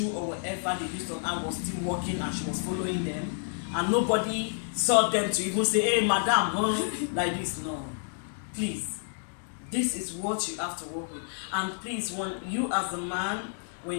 or whatever they used on her was still working and she was following them and nobody saw them to even say, hey madam, huh? Like this? No. Please. This is what you have to work with. And please, when you as a man, when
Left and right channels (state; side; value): silent; right; digital silence